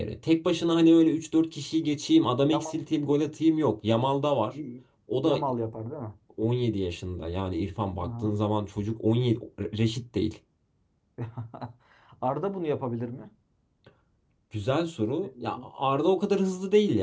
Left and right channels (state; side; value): identical; both; correlation 1.00